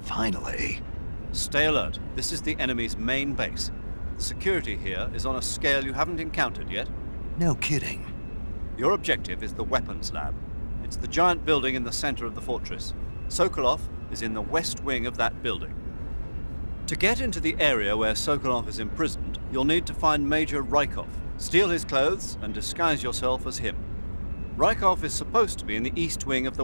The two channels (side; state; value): both; inverted; correlation -1.00